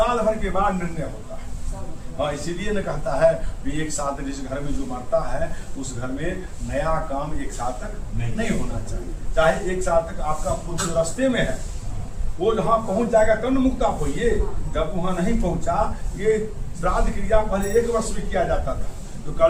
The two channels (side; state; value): both; identical; correlation 1.00